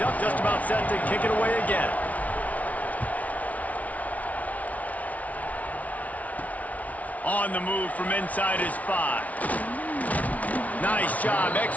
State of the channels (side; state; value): right; late; 0.070 ms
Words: up, just about set to kick it away again. On the move from inside his 5. Nice job